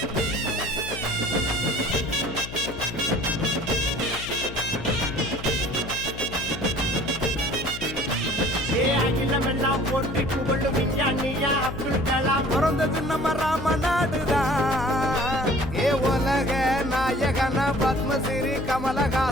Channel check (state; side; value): noise; left; hum, 12 dB below the sound